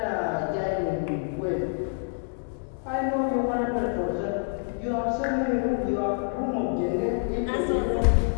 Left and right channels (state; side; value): silent; right; digital silence